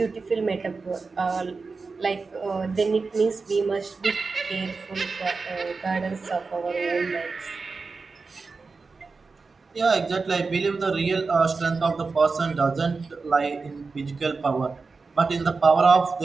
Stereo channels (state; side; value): quieter; left; 4.3 dB